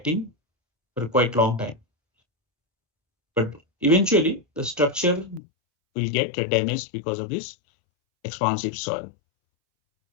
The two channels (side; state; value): right; drops out; at 5.4 s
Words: for quite long time. But eventually, the structure will get damaged because of this expansive soil.